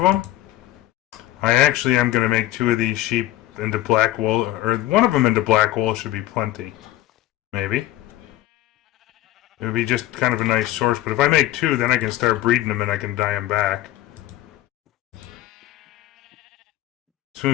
I actually am going to make 2 of these sheep into black wool, or one of them into black wool should be plenty. Maybe. It would be just kind of a nice source, but if I make 2, then I can start breeding them and I can dye them back. As soon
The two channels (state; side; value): quieter; right; 15.2 dB